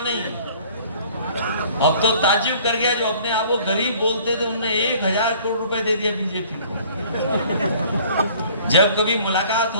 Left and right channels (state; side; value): inverted; both; correlation -0.53